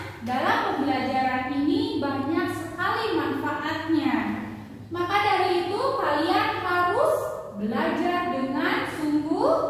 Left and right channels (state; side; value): identical; both; correlation 1.00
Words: dalam pembelajaran ini banyak sekali manfaatnya. Maka dari itu kalian harus belajar dengan